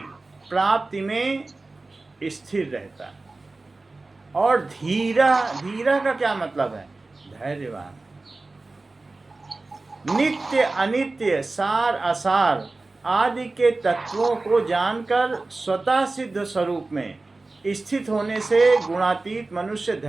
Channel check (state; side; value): quieter; left; 3.3 dB